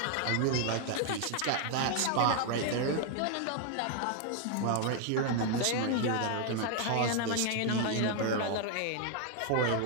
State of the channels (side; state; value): both; different; correlation 0.00